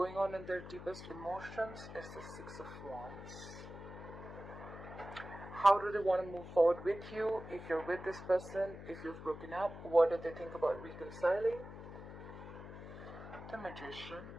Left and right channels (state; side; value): noise; left; hum, 12 dB below the sound